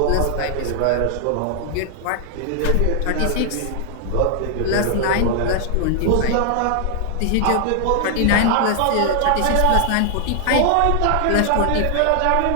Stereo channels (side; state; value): both; different; correlation 0.00